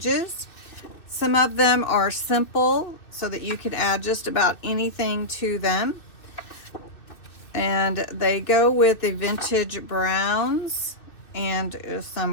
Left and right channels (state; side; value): late; right; 2.6 ms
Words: Some of them are simple so that you can add just about anything to them. And they go with the vintage browns and